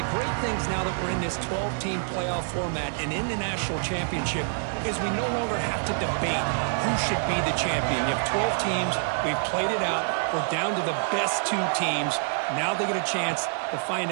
great things now that we're in this 12-team playoff format and in the national championship is we no longer have to debate who should be the champion. You have 12 teams. We've played it out. We're down to the best two teams. Now they get a chance to find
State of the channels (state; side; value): silent; left; digital silence